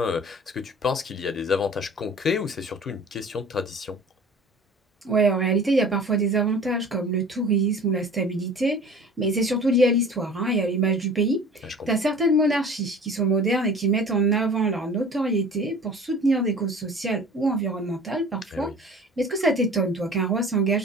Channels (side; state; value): both; normal; correlation 0.44